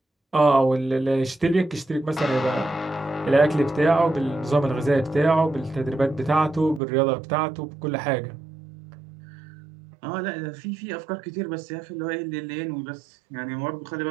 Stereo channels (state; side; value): drops out; left; at 6.8 s